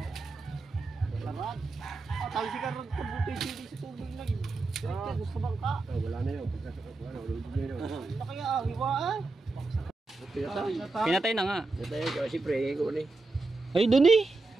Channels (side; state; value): left; quieter; 3.5 dB